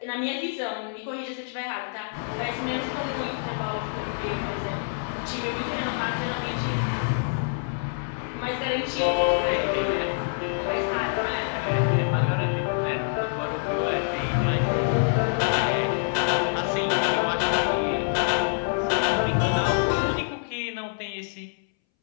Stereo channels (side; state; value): right; silent; 61 dB below the other